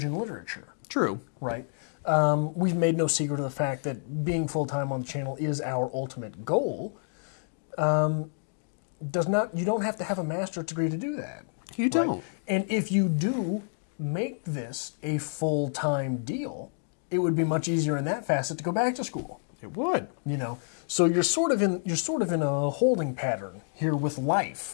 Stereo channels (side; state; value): right; silent; digital silence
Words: and literature. True. Right? We've made no secret of the fact that being full-time on the channel is our ultimate goal. You don't have to have a master's degree to do that. You don't. Right? And if you do make this a full-time deal, it would be much easier in that facet to go back to school. It would. So you're sort of in a holding pattern here with